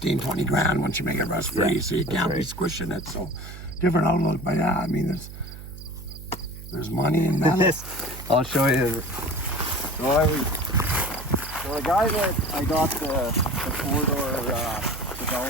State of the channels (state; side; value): noise; right; hum, 13 dB below the sound